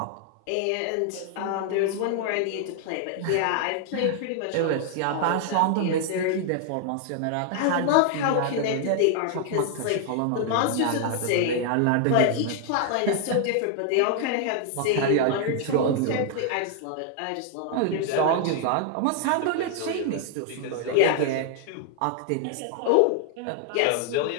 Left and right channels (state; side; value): different; both; correlation 0.00